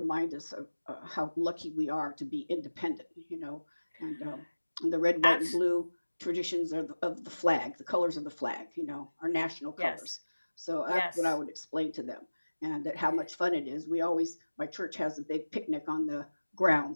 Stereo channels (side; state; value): both; inverted; correlation -1.00